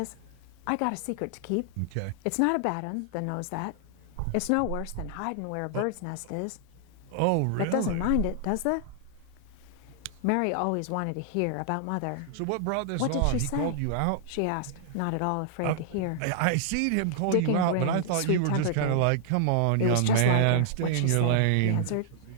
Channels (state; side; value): different; both; correlation -0.01